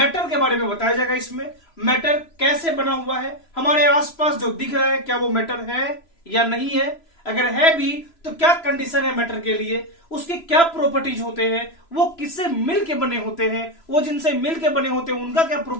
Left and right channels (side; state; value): right; late; 3.0 ms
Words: के बारे में बताया जाएगा। इसमें मैटर कैसे बना हुआ है, हमारे आसपास जो दिख रहा है क्या वो मैटर है या नहीं है, अगर है भी तो क्या कंडीशन है मैटर के लिए, उसके क्या प्रॉपर्टीज होते हैं, वो किससे मिलके बने होते हैं, वो जिनसे मिलके बने होते हैं उनका क्या